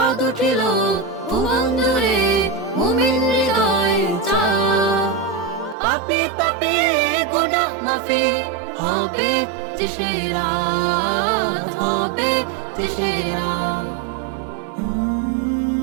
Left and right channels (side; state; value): left; drops out; at 5.8 s